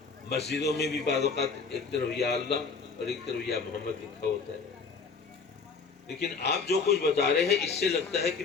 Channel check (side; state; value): right; quieter; 4.9 dB